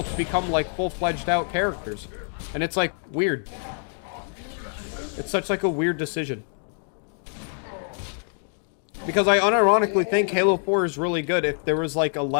to become, like, full-fledged out characters. And it's, like, weird. It's such, like, a weird decision. Because I unironically think Halo 4 is really good if there was, like, a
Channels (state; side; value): silent; right; 57 dB below the other